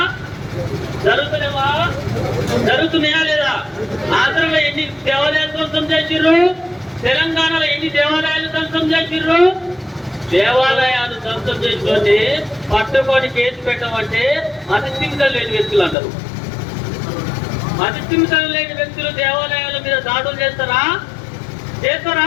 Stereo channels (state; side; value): drops out; right; at 16.0 s